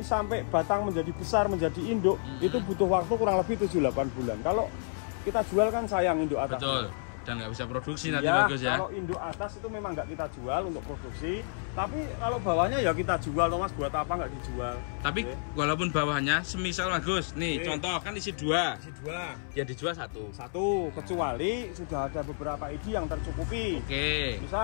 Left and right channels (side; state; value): right; silent; 58 dB below the other